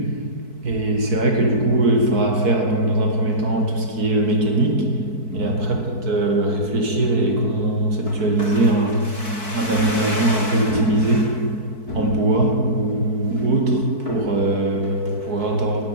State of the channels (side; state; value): left; late; 4.6 ms